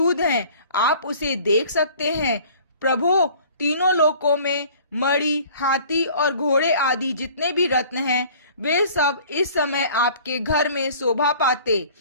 हैं, आप उसे देख सकते हैं। प्रभु, तीनों लोकों में मणि, हाथी और घोड़े आदि जितने भी रत्न हैं, वे सब इस समय आपके घर में शोभा पाते।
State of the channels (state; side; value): inverted; both; correlation -0.49